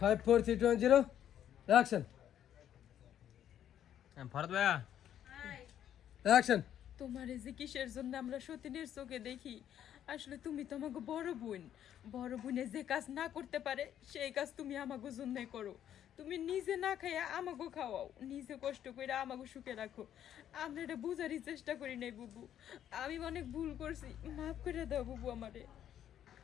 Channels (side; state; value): right; quieter; 10.4 dB